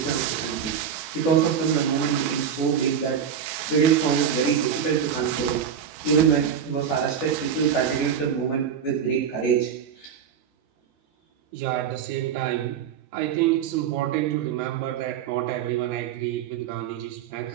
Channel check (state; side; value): quieter; left; 8.0 dB